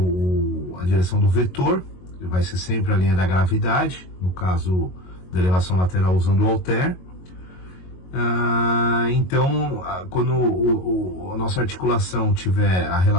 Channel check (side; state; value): right; late; 22 ms